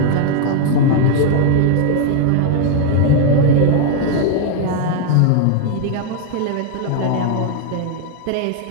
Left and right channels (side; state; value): both; different; correlation 0.00